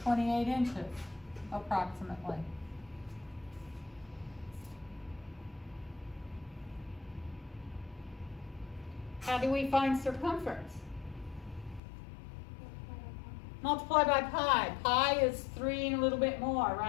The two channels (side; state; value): right; drops out; at 11.8 s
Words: 28 inches, approximately? How do we find circumference? Multiply by pi. Pi is 3 and a little bit more,